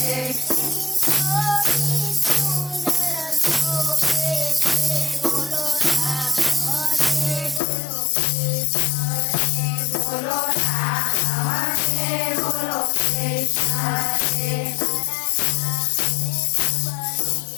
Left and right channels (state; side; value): drops out; right; at 7.6 s